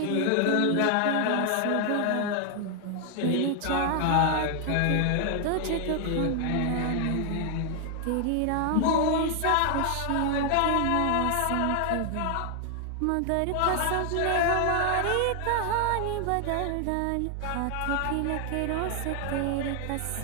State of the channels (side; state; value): both; different; correlation 0.00